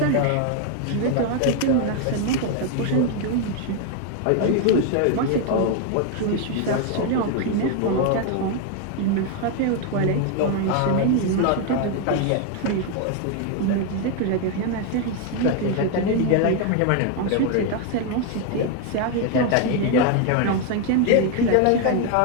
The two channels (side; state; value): both; different; correlation 0.01